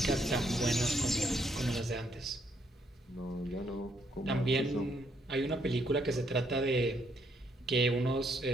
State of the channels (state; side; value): normal; both; correlation 0.72